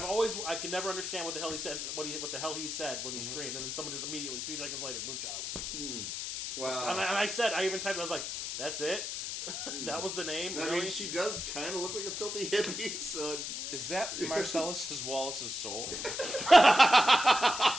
can never understand what the hell he said. What the hell he said when he screamed, and then someone just immediately 3 seconds later, Moonchild. Wow. And I said, I even typed. I was like, that's it. That was the name. I Really? mean, she does kind of look like a filthy hippie, so... Is that Marcellus Wallace's soul? Is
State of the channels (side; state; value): left; noise; hiss, 4 dB below the sound